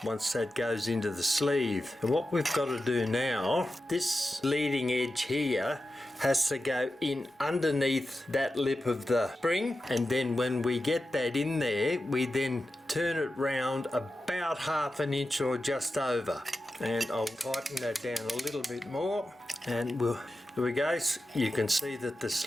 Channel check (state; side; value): normal; both; correlation 0.92